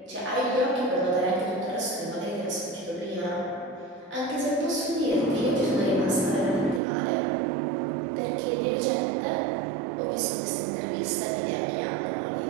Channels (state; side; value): drops out; left; at 6.8 s